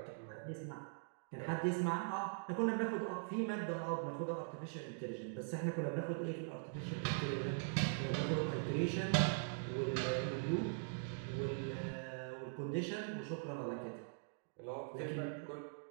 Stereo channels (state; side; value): silent; left; digital silence